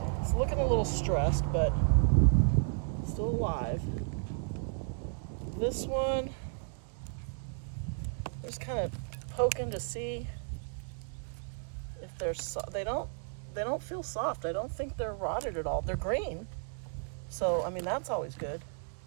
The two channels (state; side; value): silent; left; digital silence